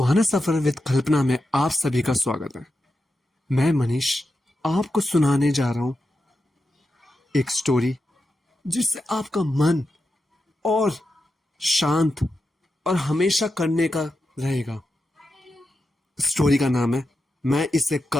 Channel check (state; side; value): normal; both; correlation 0.89